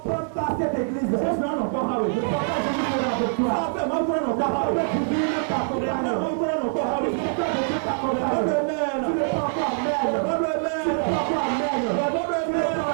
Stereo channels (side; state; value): left; silent; digital silence